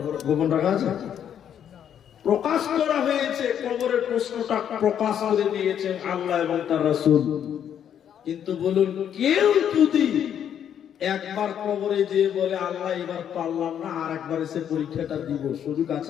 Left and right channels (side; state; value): right; quieter; 9.2 dB